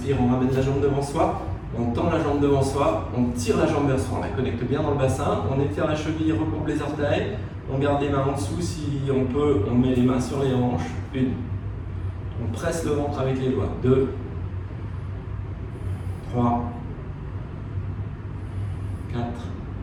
on ramène la jambe devant soi. On tend la jambe devant soi, on tire la jambe vers soi, on la connecte bien dans le bassin, on étire la cheville, recoupe les orteils, on garde les mains en dessous, si on peut, on met les mains sur les hanches. 1, on presse le ventre avec les doigts. 2, 3, 4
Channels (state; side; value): identical; both; correlation 1.00